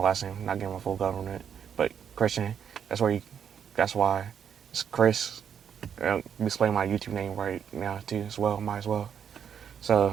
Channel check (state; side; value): quieter; left; 8.0 dB